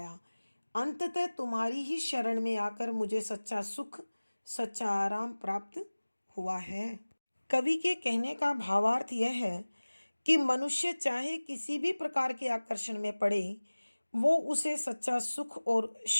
अंततः तुम्हारी ही शरण में आकर मुझे सच्चा सुख, सच्चा आराम प्राप्त हुआ है। कवि के कहने का भावार्थ यह है कि मनुष्य चाहे किसी भी प्रकार के आकर्षण में पड़े, वो उसे सच्चा सुख और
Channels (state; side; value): inverted; both; correlation -1.00